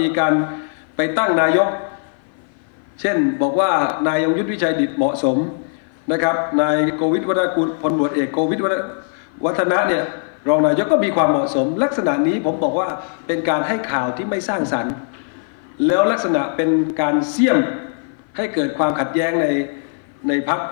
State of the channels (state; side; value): silent; right; 57 dB below the other